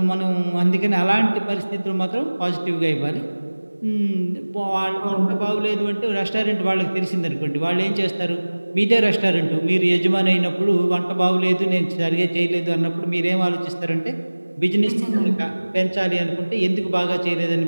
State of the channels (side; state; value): both; inverted; correlation -1.00